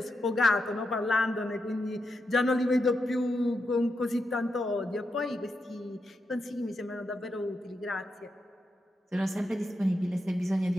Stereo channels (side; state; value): both; normal; correlation 0.85